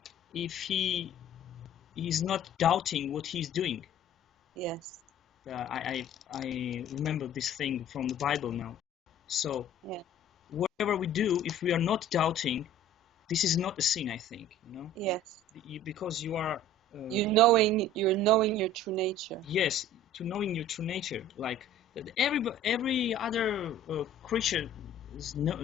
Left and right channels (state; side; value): normal; both; correlation 0.47